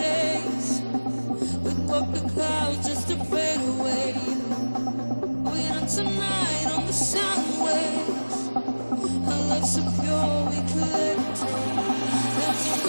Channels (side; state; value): both; inverted; correlation -1.00